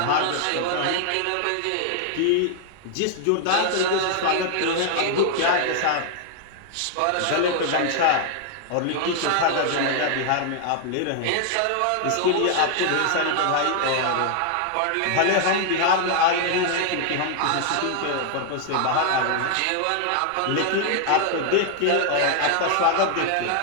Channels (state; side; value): different; both; correlation 0.00